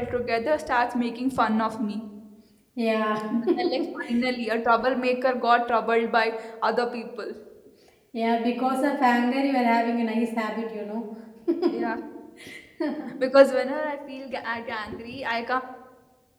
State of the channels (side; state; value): both; identical; correlation 1.00